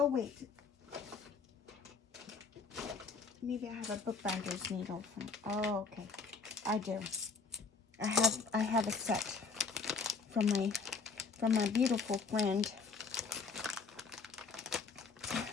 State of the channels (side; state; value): right; quieter; 4.9 dB